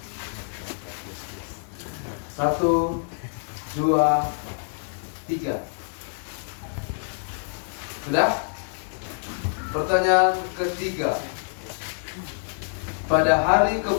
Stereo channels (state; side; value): silent; right; digital silence